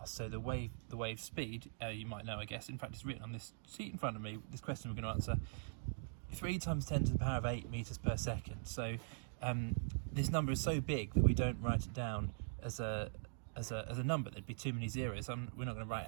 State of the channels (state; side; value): silent; left; digital silence